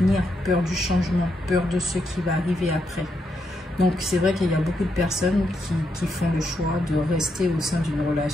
peur du changement, peur de ce qui va arriver après. Donc c'est vrai qu'il y a beaucoup de personnes qui font le choix de rester au sein d'une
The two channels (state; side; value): normal; both; correlation 0.80